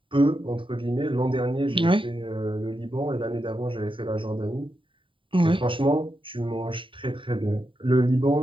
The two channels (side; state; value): left; late; 0.25 ms